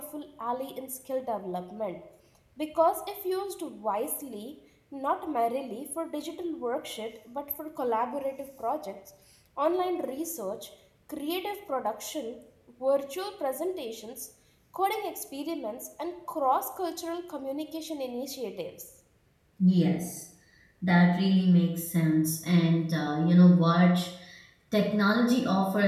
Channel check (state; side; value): identical; both; correlation 1.00